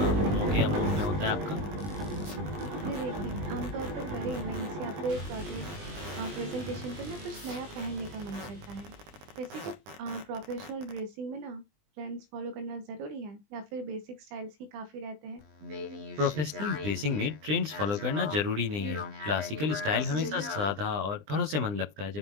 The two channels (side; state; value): left; late; 20 ms